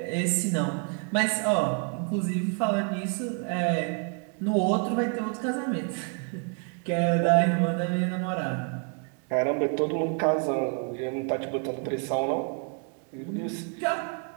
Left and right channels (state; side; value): quieter; left; 39.2 dB